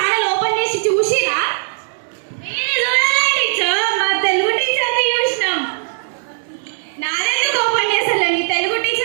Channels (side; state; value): left; silent; digital silence